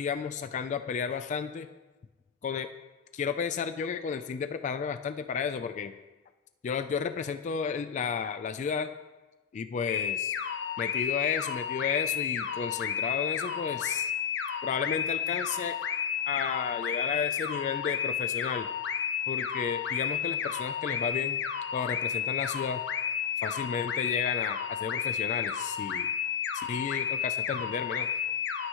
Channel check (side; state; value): right; quieter; 6.9 dB